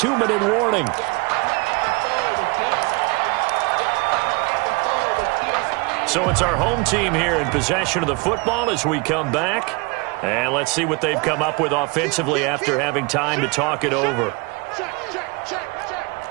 warning. So it's our home team here in possession of the football as we come back. And let's see what they've come up with offensively after having time to talk it over. Check. 6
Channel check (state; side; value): quieter; left; 27.8 dB